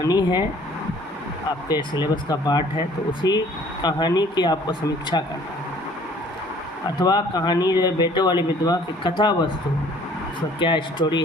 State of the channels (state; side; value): normal; both; correlation 0.55